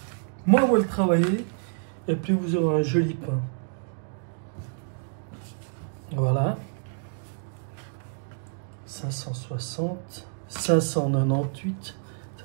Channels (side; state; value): left; silent; digital silence